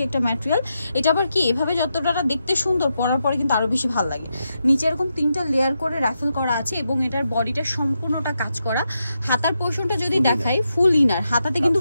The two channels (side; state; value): both; inverted; correlation -0.85